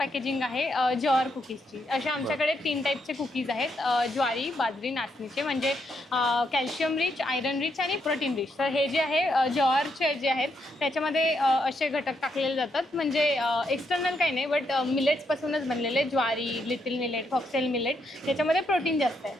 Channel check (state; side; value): normal; both; correlation 0.79